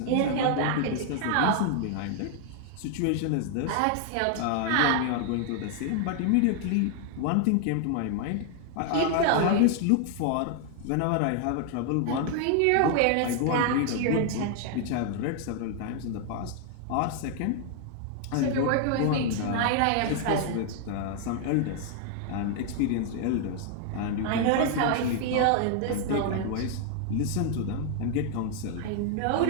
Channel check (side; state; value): both; different; correlation 0.00